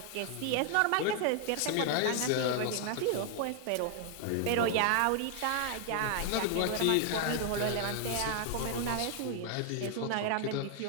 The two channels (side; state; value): both; different; correlation 0.00